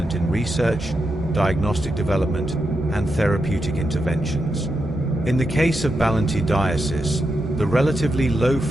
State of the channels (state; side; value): normal; both; correlation 0.86